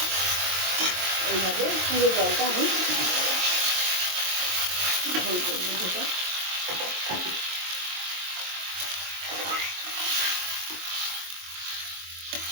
এইভাবে পুরো জলটা আমি ঝোল করবো। যেটা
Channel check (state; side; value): late; left; 22 ms